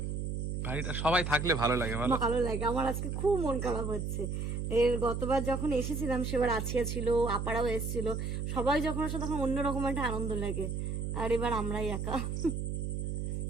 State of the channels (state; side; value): noise; right; hum, 2 dB below the sound